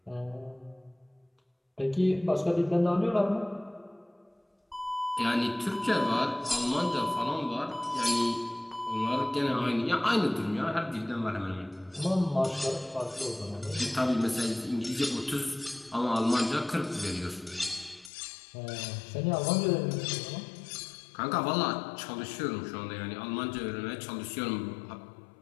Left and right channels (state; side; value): drops out; right; at 18.1 s